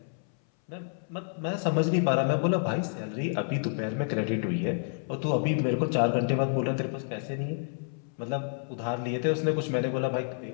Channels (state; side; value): silent; right; 58 dB below the other